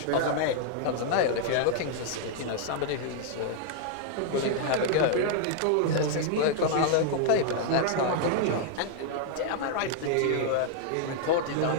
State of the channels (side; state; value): both; different; correlation -0.01